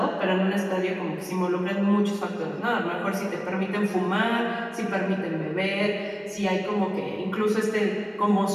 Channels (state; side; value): identical; both; correlation 1.00